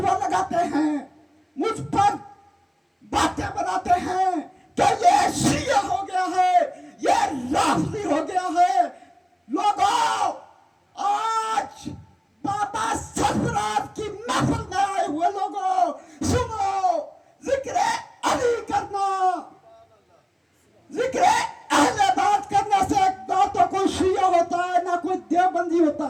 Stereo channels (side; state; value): both; identical; correlation 1.00